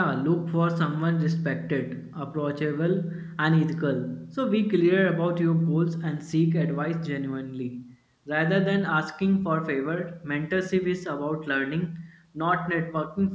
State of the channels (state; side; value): identical; both; correlation 1.00